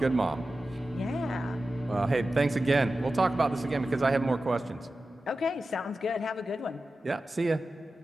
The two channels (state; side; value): normal; both; correlation 0.94